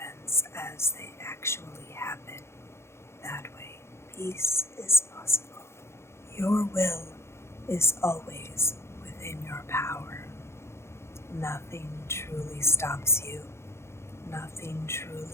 as they actually happen. That way, peace is possible. Your will is always within your power. Nothing truly stops you. Nothing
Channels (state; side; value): late; right; 0.13 ms